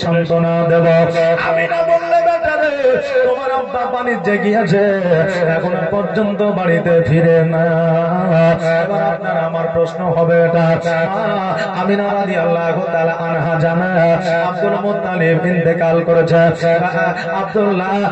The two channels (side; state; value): both; identical; correlation 1.00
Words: সান্ত্বনা দেব। আমি না বললে বেটা রে তোমার আব্বা বাণিজ্যে গিয়েছে, এখন পর্যন্ত বাড়িতে ফিরে না। এবার আপনার আমার প্রশ্ন হবে, এটা আমিনা রাদিয়াল্লাহু তাআলা আনহা জানা আব্দুল মুত্তালিব ইন্তেকাল করেছে, আব্দুল্লাহ